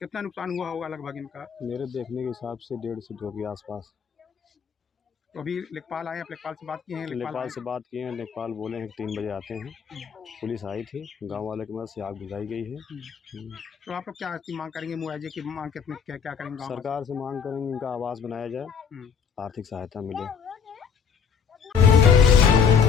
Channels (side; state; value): right; quieter; 6.9 dB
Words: कितना नुकसान हुआ होगा लगभग इनका? मेरे देखने के हिसाब से 1.5 से 2 के आसपास। तो अभी लेखपाल आए, आप लेखपाल से बात किए हैं? लेखपाल से बात किए हैं, लेखपाल बोले हैं कि 3 बजे आते हैं। पुलिस आई थी, गांव वाले की मदद से आग बुझाई गई है। तो आप लोग क्या मांग करेंगे? मुआवजे की मांग कितने, क्या करेंगे? सरकार से मांग करेंगे इनका आवास बनाया जाए, आर्थिक सहायता मिले।